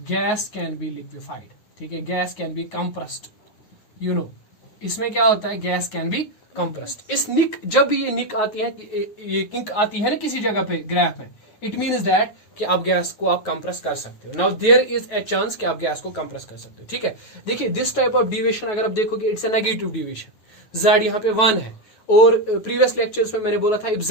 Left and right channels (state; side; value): late; right; 9.3 ms